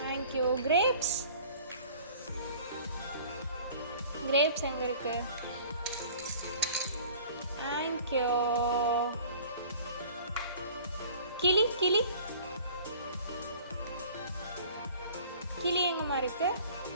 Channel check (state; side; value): inverted; both; correlation -0.48